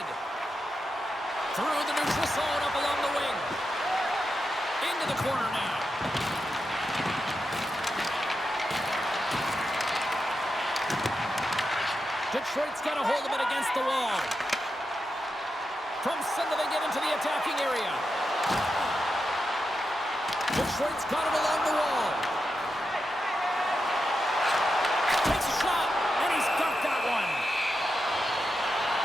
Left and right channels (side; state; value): both; normal; correlation 0.88